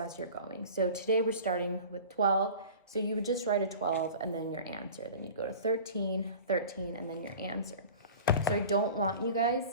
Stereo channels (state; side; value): inverted; both; correlation -0.40